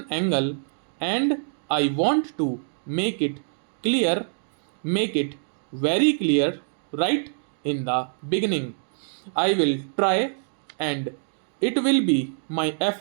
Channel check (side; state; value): left; silent; digital silence